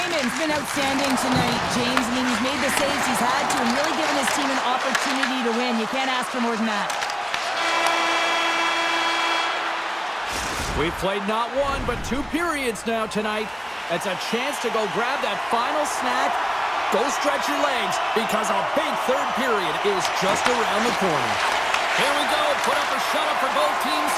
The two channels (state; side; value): identical; both; correlation 1.00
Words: been outstanding tonight, James. I mean, he's made the saves he's had to and really given his team an opportunity to win. You can't ask for more than that. We've played not 1, but 2 periods now tonight. It's a chance to go grab that final snack. Go stretch your legs because a big third period is just around the corner. Here we go. Put up or shut up for both teams